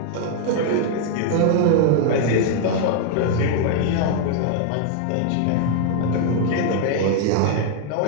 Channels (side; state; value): both; different; correlation 0.00